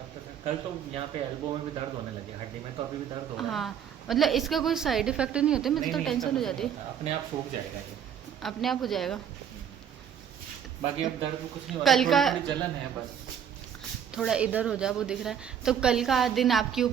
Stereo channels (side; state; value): left; quieter; 8.6 dB